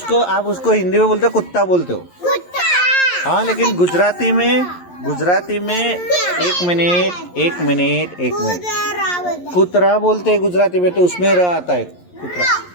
उसको हिंदी में बोलते हो, कुत्ता बोलते हो। हाँ, लेकिन गुजराती में एक मिनट कुतरा बोलते हैं गुजराती में, तो उसमें र आता है कुतरा।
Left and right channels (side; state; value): right; late; 11 ms